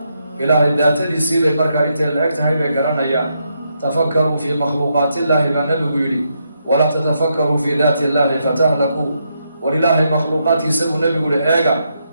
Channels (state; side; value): inverted; both; correlation -0.80